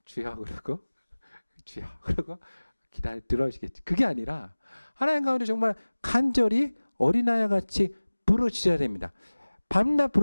주여 그러고 주여 그러고 기다려 들어주시겠지. 그게 아니라 하나님 가운데 정말 간절히 어린아이와 같이 부르짖어야 됩니다. 밤낮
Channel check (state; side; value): inverted; both; correlation -1.00